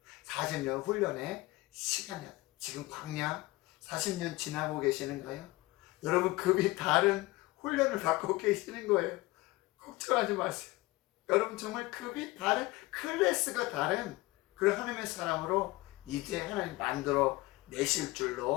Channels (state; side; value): quieter; right; 20.8 dB